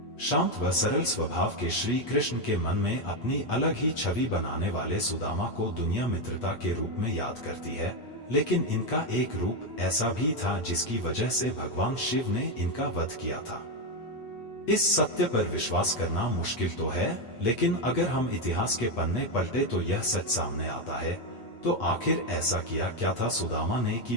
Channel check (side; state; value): right; late; 8.3 ms